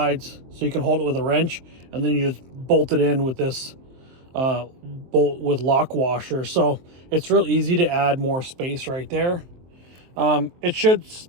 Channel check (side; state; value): left; late; 23 ms